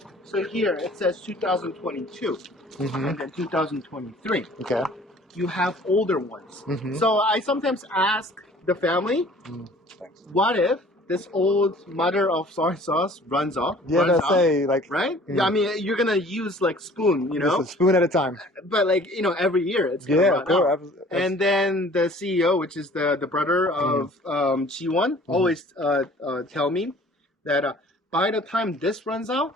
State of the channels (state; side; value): normal; both; correlation 0.51